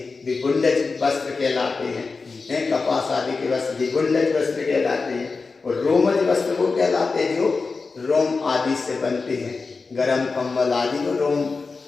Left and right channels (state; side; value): quieter; right; 4.3 dB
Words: वे बुंडज वस्त्र कहलाते हैं। कपास आदि के वस्त्र भी बुंडज वस्त्र कहलाते हैं। और रोमज वस्त्र वो कहलाते हैं जो रोम आदि से बनते हैं। गरम कंबल आदि को रोम